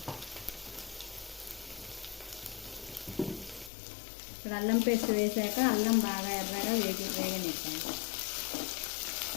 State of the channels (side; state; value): right; drops out; at 3.7 s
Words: ఇప్పుడు అల్లం పేస్ట్ వేసాక అల్లం బాగా ఎర్రగా వేగనిస్తాను.